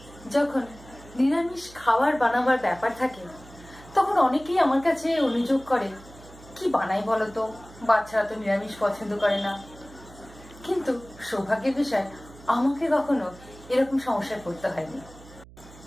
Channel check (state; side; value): noise; right; hum, 20 dB below the sound